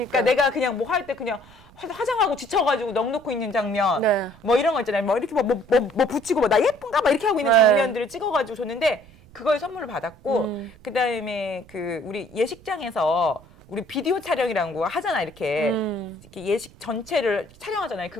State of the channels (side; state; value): right; noise; rumble, 24 dB below the sound